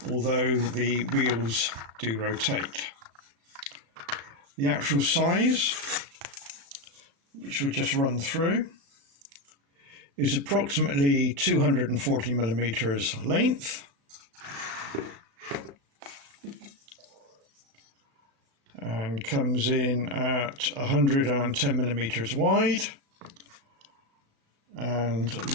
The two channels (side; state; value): left; late; 35 ms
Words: although the wheels do rotate. The actual size, which we'll just run through, is approximately 240mm length and comes in at 110mm wide and